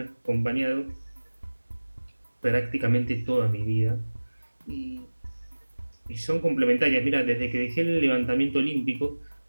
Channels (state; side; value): inverted; both; correlation -1.00